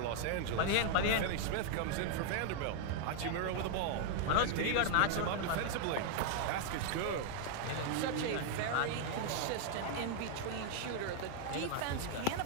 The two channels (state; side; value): different; both; correlation 0.00